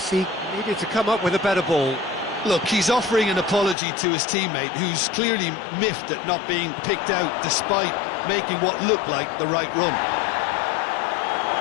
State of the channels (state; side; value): drops out; right; at 3.8 s